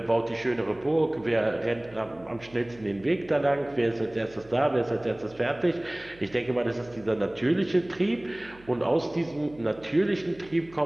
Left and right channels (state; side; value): noise; right; hum, 24 dB below the sound